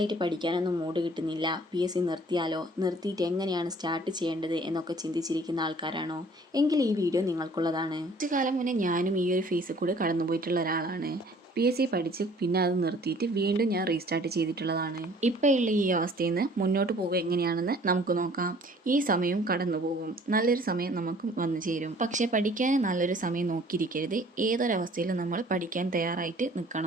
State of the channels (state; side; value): normal; both; correlation 0.54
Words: പഠിക്കാനൊന്നും മൂഡ് കിട്ടുന്നില്ല. PSC നിർത്തിയാലോ? നിർത്തിയിട്ട് എങ്ങനെയാണ് സ്റ്റാർട്ട് ചെയ്യേണ്ടത് എന്നൊക്കെ ചിന്തിച്ചിരിക്കുന്ന ആൾക്കാരാണോ? എങ്കിൽ ഈ വീഡിയോ നിങ്ങൾക്കുള്ളതാണ്. കുറച്ചു കാലം മുന്നേ ഞാനും ഈ ഒരു ഫേസിൽ കൂടെ കടന്നുപോയിട്ടുള്ള ഒരാളാണ്. PSC പഠിച്ച് പിന്നെ അത് നിർത്തിയിട്ട് വീണ്ടും ഞാൻ റീസ്റ്റാർട്ട് ചെയ്തിട്ടുള്ളതാണ്. ഇപ്പോൾ ഉള്ള ഈ അവസ്ഥയിൽ നിന്ന് മുന്നോട്ട് പോകുക എങ്ങനെയാണെന്ന് നമുക്ക് നോക്കാം. ഈ സമയവും കടന്നു പോകും. നല്ലൊരു സമയം നമുക്ക് വന്നു ചേരും. പക്ഷേ പഠിക്കാൻ നല്ലൊരു സമയം നോക്കിയിരിക്കരുത്. ഏതൊരവസ്ഥയിലും നമ്മൾ പഠിക്കാൻ തയ്യാറായിട്ട്